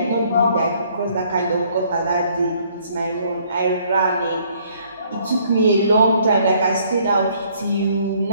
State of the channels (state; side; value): inverted; both; correlation -0.63